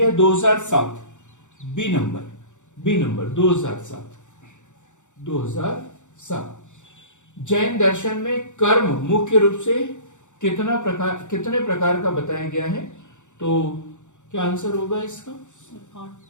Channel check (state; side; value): late; right; 0.85 ms